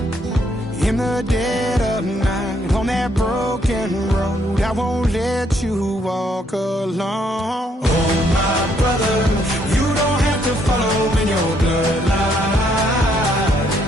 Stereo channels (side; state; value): both; normal; correlation 0.71